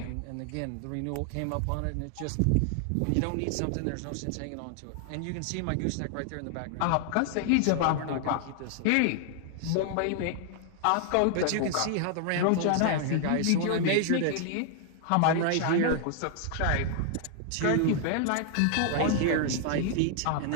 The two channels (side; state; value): both; different; correlation 0.00